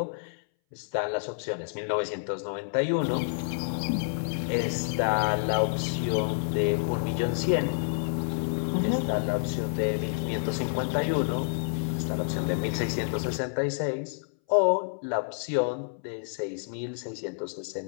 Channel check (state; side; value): silent; right; 59 dB below the other